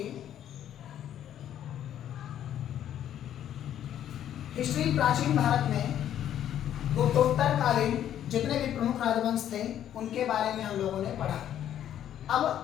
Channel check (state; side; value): quieter; right; 10.7 dB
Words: हिस्ट्री प्राचीन भारत में गुप्तोत्तर कालीन जितने भी प्रमुख राजवंश थे उनके बारे में हम लोगों ने पढ़ा। अब